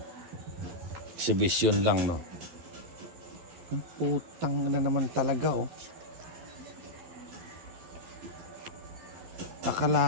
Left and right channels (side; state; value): left; late; 12 ms